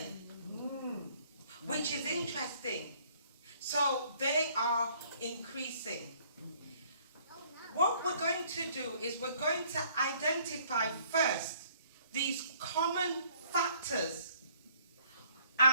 which is interesting. So they are increasing. What we're going to do is we're going to identify first these common factors,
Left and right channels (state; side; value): inverted; both; correlation -0.60